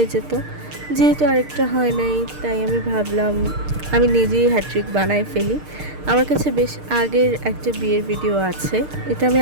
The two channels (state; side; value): late; left; 6.6 ms